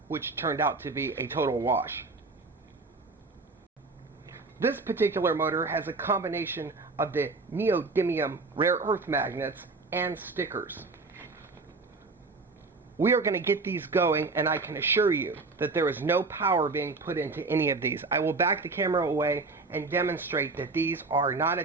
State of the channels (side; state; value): left; quieter; 3.8 dB